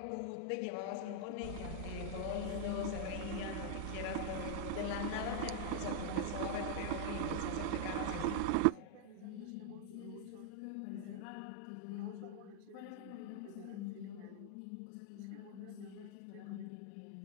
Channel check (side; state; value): both; different; correlation -0.01